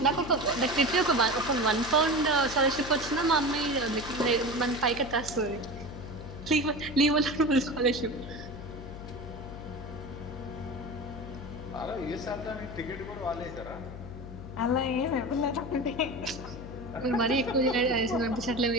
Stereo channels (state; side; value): noise; left; hum, 12 dB below the sound